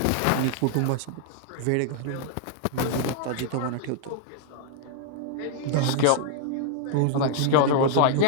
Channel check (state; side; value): different; both; correlation -0.01